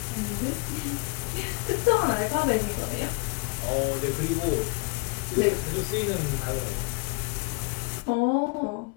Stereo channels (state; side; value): quieter; right; 31.1 dB